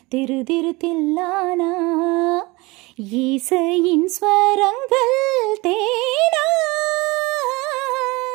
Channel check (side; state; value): left; quieter; 23.6 dB